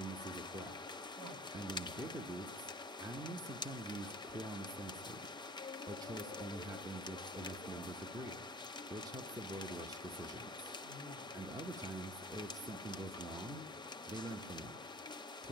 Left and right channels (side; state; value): both; normal; correlation 0.46